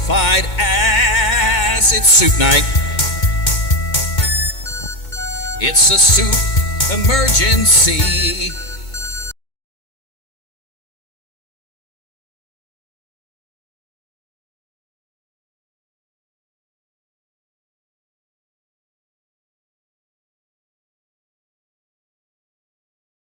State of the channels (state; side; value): late; right; 2.2 ms